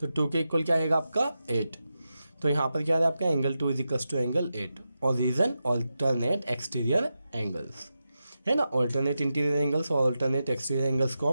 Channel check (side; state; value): both; inverted; correlation -0.90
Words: तो 2 के इक्वल क्या आएगा, आपका 8। तो यहाँ पर क्या है आपका angle 2 is equals to angle 8। और रीजन ऑल्टरनेट एक्सटीरियर एंगल्स, है ना। ऑल्टरनेट इंटीरियर एंगल्स और ऑल्टरनेट एक्सटीरियर एंगल्स को